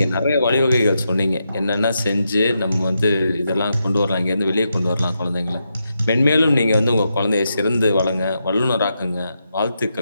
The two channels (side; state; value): both; inverted; correlation -0.84